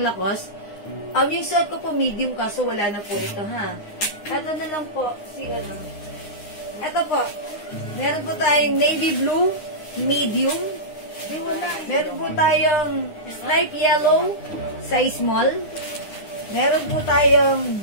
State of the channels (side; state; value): right; late; 9.7 ms